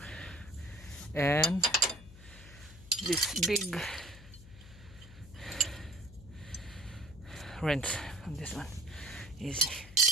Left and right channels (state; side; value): noise; left; hum, 18 dB below the sound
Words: and this big wrench on this one. Easy.